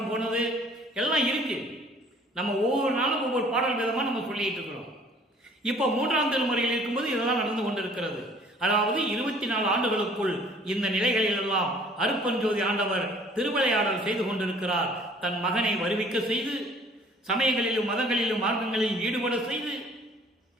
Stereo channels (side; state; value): both; normal; correlation 0.54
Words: போனது எல்லாம் இருக்கு. நம்ம ஒவ்வொரு நாளும் ஒவ்வொரு பாடல் விதமாக நம்ம சொல்லிட்டு இருக்கிறோம். இப்போ 3ஆம் திருமுறையில் இருக்கும்போது இதெல்லாம் நடந்து கொண்டிருக்கிறது. அதாவது 24 ஆண்டுகளுக்குள் இந்த நிலைகளில் எல்லாம் அருட்பெருஞ்சோதி ஆண்டவர் திருவிளையாடல் செய்து கொண்டிருக்கிறார். தன் மகனை வருவிக்க செய்து, சமயங்களிலும் மதங்களிலும் மார்க்கங்களிலும் ஈடுபட செய்து,